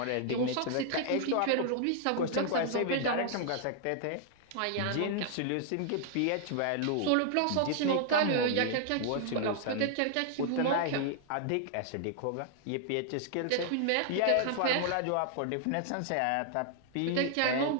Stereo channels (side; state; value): both; different; correlation -0.01